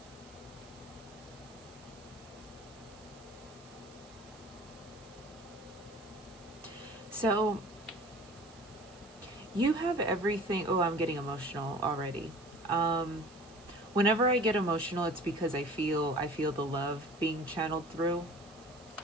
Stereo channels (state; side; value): noise; right; hiss, 23 dB below the sound